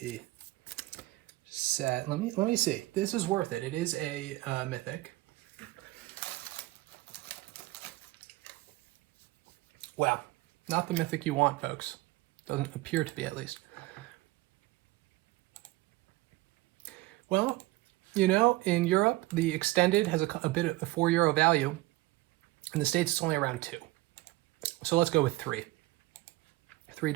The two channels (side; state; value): left; quieter; 19.1 dB